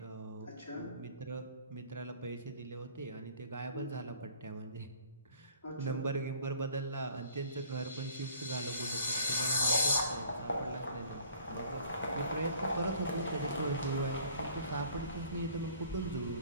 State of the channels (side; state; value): both; inverted; correlation -0.53